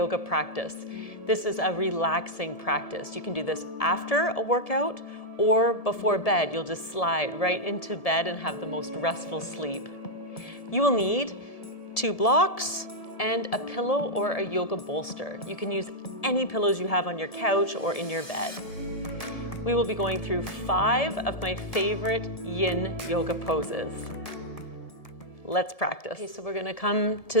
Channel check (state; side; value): late; right; 1.7 ms